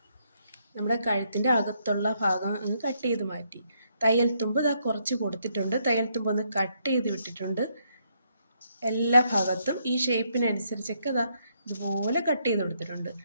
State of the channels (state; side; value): inverted; both; correlation -0.75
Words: നമ്മുടെ കഴുത്തിൻ്റെ അകത്തുള്ള ഭാഗം ഒന്ന് കട്ട് ചെയ്ത് മാറ്റി. തയ്യൽ തുമ്പ് ഇതാ കുറച്ച് കൊടുത്തിട്ടുണ്ട്. തയ്യൽ തുമ്പ് ഒന്ന് കട്ട് ചെയ്ത് വിട്ടിട്ടുണ്ട്. എല്ലാ ഭാഗത്തും ഈ ഷേപ്പിനനുസരിച്ചൊക്കെ ഇതാ ഇതുപോലെ കട്ട് ചെയ്ത് കൊടുത്തിട്ടുണ്ട്.